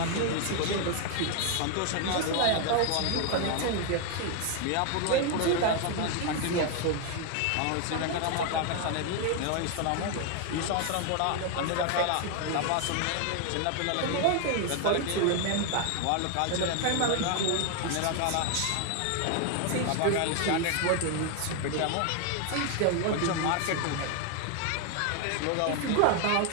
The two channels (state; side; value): different; both; correlation 0.01